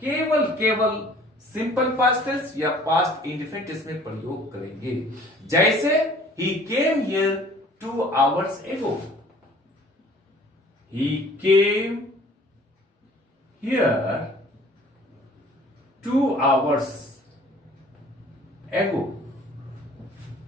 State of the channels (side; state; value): both; normal; correlation 0.52